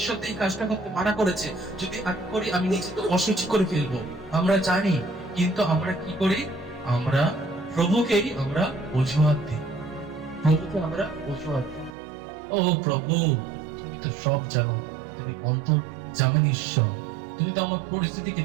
তো এই কাজটা করতে মানা করেছে, যদি আমি করি আমি নিজেকে অসুচি করে ফেলবো। আমরা জানি, কিন্তু আমরা কি করি? আমরা প্রভুকেই আমরা অজুহাত দিই, প্রভুকে আমরা অজুহাত দিই। ও প্রভু, তুমি তো সব জানো, তুমি অন্তর জানেন ঈশ্বর, তুমি তো আমার পরিস্থিতিকে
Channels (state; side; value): drops out; left; at 12.0 s